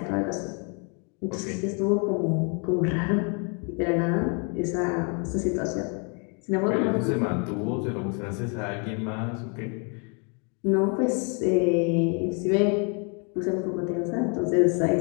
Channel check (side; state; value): right; quieter; 36.3 dB